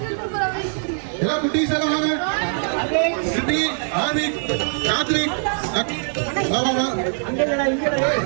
எல்லாம் குட்டீஸ் எல்லாம் வாங்க. சிட்டி, ஆதிக், கார்த்திக், வா வா வா.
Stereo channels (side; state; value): left; silent; digital silence